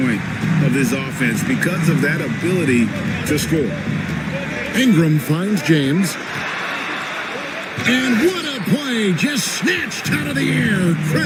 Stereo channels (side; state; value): both; identical; correlation 1.00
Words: of this offense, because of that ability to score. Ingram finds James. And what a play! Just snatched out of the air.